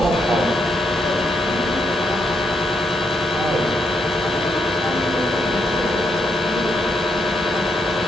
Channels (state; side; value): normal; both; correlation 0.78